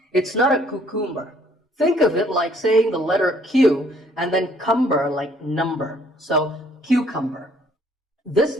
It's not a cucumber. Think of it like saying the letter Q and then cumber like number. So cucumber. This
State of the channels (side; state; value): both; normal; correlation 0.62